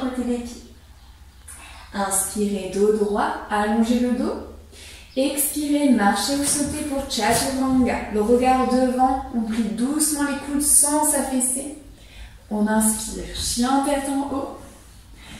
des pieds. Inspirez, dos droit, allongez le dos. Expirez, marchez ou sautez pour Chaturanga. Le regard devant, on plie doucement les coudes sans s'affaisser. On inspire, chien tête en haut.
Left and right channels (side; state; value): both; identical; correlation 1.00